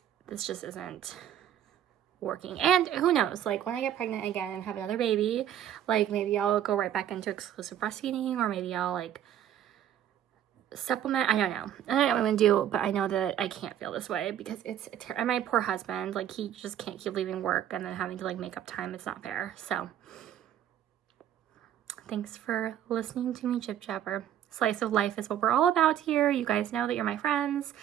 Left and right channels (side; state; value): left; quieter; 10.6 dB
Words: this just isn't working. And who knows, like, when I get pregnant again and have another baby, like, maybe I'll go right back into exclusive breastfeeding, or maybe I'll, like, supplement. I don't know what I'm gonna do, but I know that I can't feel this way, because it's and my poor husband, like, he just can't keep leaving work and then having to, like, make up time. It's not fair. So thanks for listening to me jib jabber. Slice of life is what we're all about here. You guys know that you're my friends,